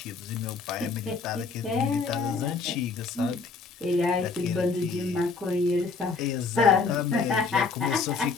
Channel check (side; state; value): right; quieter; 4.5 dB